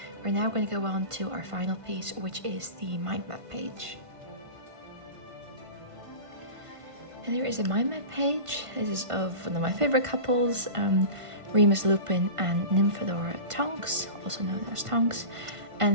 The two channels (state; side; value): late; left; 1.5 ms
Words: We're now going to go on to our final piece, which is the mind map page. And there is a mind map page. This is of one of my favorite couples, Remus Lupin and Nymphadora Tonks, also known as Tonks,